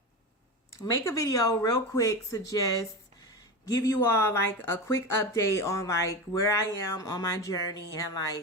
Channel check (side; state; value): both; normal; correlation 0.22